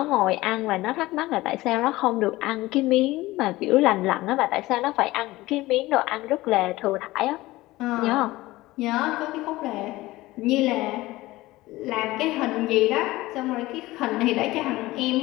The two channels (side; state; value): right; quieter; 18.6 dB